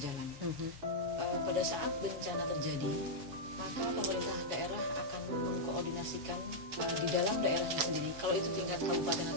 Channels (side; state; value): left; late; 7.1 ms